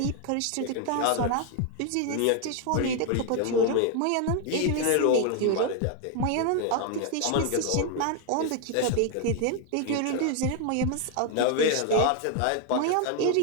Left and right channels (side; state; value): both; different; correlation 0.01